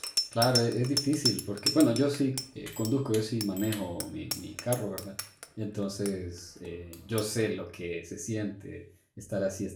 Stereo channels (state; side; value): identical; both; correlation 1.00